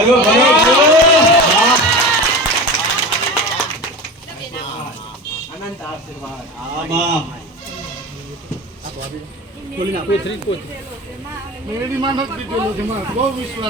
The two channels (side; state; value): both; normal; correlation 0.30